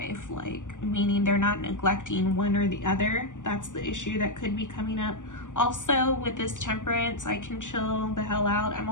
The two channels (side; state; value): right; late; 0.87 ms